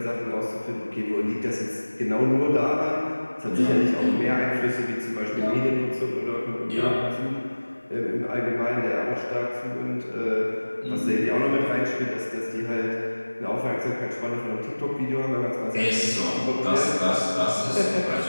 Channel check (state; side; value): inverted; both; correlation -1.00